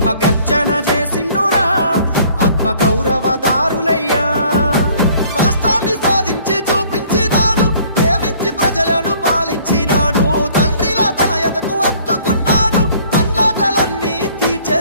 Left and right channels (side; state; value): both; inverted; correlation -0.57